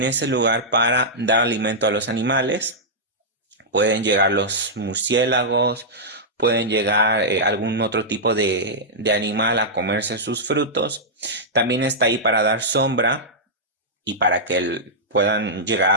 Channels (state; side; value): normal; both; correlation -0.10